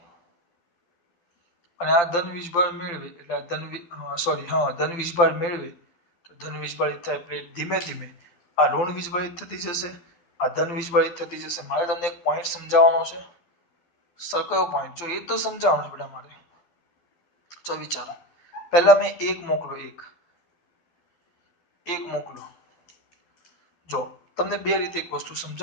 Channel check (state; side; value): late; right; 12 ms